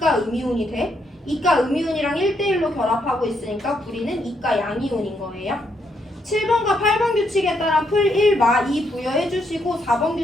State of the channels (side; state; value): both; normal; correlation 0.76